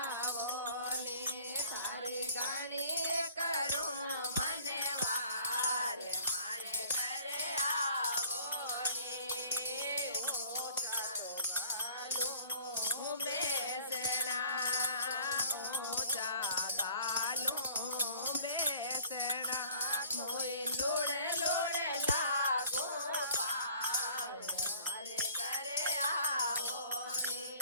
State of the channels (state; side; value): inverted; both; correlation -0.51